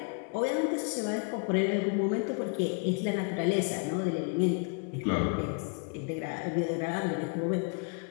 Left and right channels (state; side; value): quieter; right; 37.1 dB